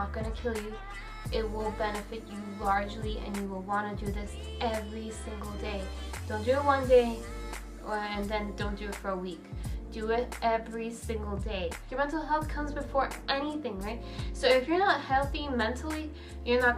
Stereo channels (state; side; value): identical; both; correlation 1.00